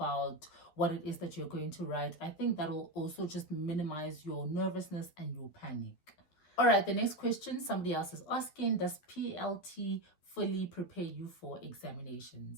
what it is that you're going to write, I think that will also just minimize your nervousness and your panic. All right, the next question somebody else is asking, does PLT fully prepare you for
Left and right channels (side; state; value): right; late; 11 ms